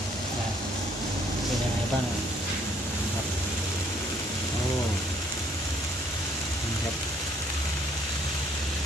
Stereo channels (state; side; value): normal; both; correlation 0.64